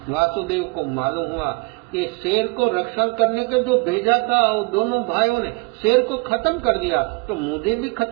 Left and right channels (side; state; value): left; quieter; 28.5 dB